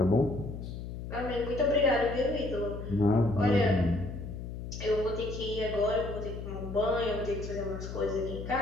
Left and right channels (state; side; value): noise; left; hum, 8 dB below the sound